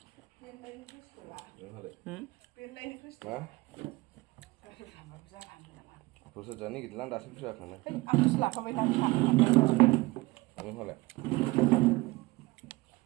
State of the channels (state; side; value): quieter; left; 21.7 dB